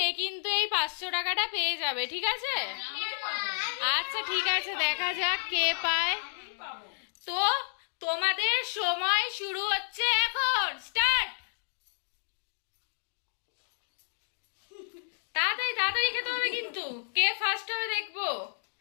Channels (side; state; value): right; silent; digital silence